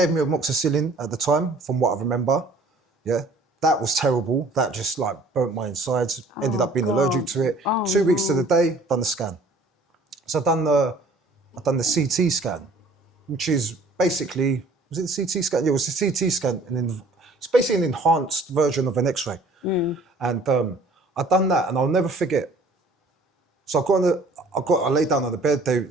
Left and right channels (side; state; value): left; quieter; 3.0 dB